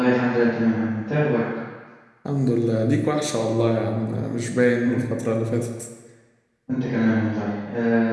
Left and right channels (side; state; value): both; identical; correlation 1.00